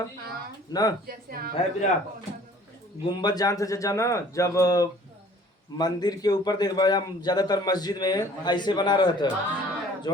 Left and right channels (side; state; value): both; normal; correlation 0.52